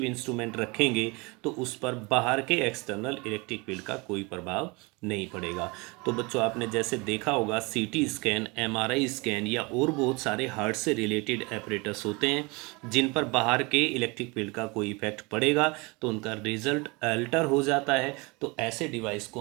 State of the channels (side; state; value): left; quieter; 27.1 dB